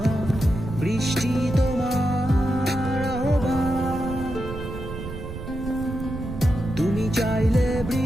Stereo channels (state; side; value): noise; right; rumble, 9 dB below the sound